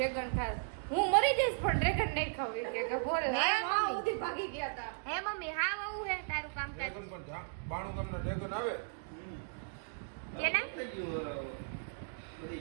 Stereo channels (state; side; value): silent; left; digital silence